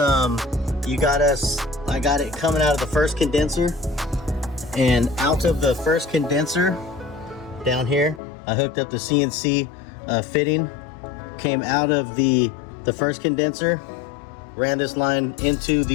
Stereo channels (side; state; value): right; drops out; at 8.2 s